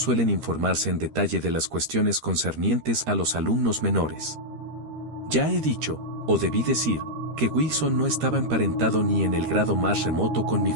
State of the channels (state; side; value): late; left; 13 ms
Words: informarse en detalle de las cuestiones concernientes a los alumnos menores. Ya he dicho, o debí decir, que Wilson no estaba emparentado ni en el grado más remoto con mi